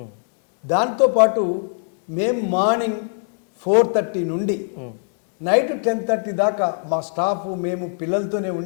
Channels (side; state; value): right; silent; 65 dB below the other